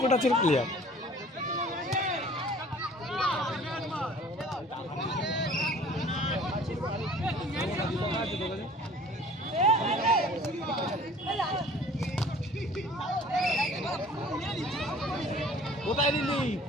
টাচের প্লেয়ার। কোথায় দিলি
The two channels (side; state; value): both; normal; correlation 0.49